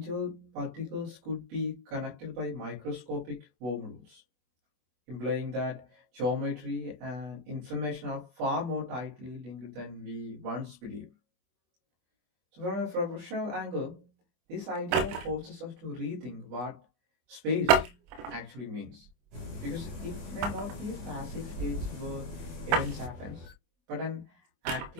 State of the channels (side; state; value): left; late; 24 ms